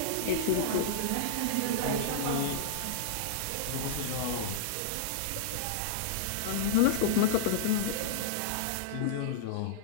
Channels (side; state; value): both; different; correlation -0.02